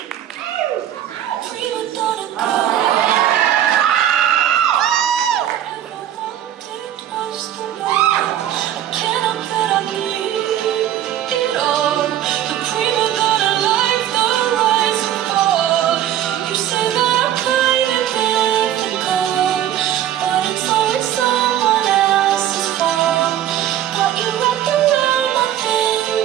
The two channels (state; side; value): quieter; left; 11.4 dB